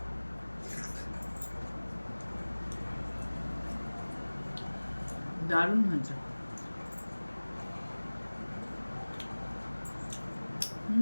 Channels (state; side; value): inverted; both; correlation -1.00